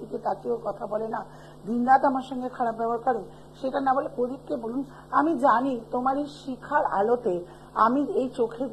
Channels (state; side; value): identical; both; correlation 1.00